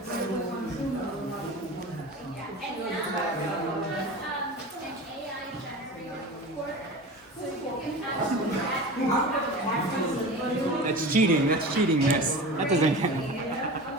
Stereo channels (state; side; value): normal; both; correlation 0.32